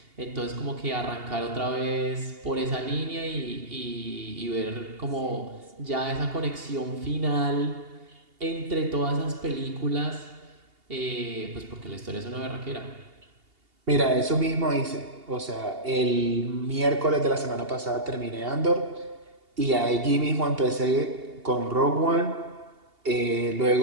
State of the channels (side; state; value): left; late; 2.8 ms